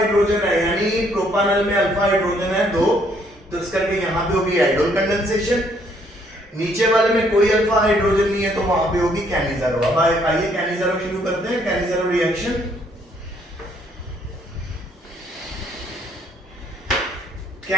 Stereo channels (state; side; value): normal; both; correlation 0.67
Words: है, यानी प्रोपानल में अल्फा हाइड्रोजन है 2, तो इस करके यहां पे होगी आइडोल कंडेंसेशन। नीचे वाले में कोई अल्फा हाइड्रोजन नहीं है तो वहां पे होगी कैनिज़ारो। अब आइए कैनिज़ारो शुरू करते हैं, Cannizzaro reaction.